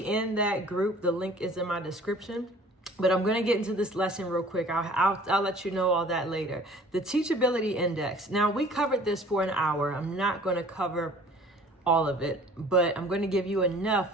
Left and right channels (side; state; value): both; normal; correlation 0.50